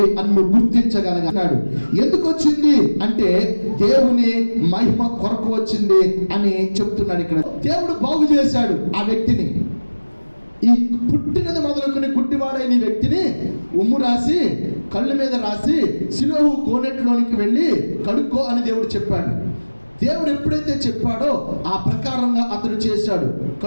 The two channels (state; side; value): inverted; both; correlation -1.00